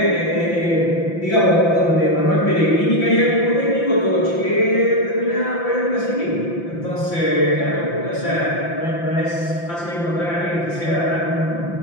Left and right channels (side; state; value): right; late; 5.8 ms